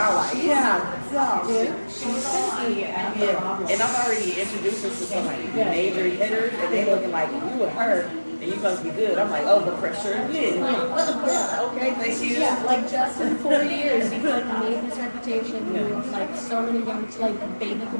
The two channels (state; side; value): inverted; both; correlation -1.00